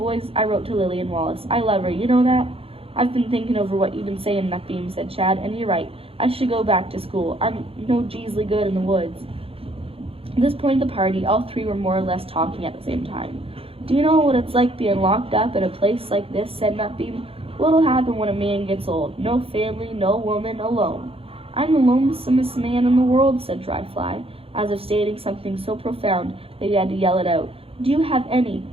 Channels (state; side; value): late; left; 0.27 ms